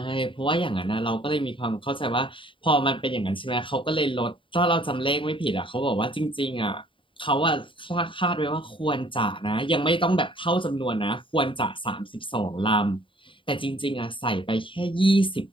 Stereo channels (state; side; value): late; right; 0.25 ms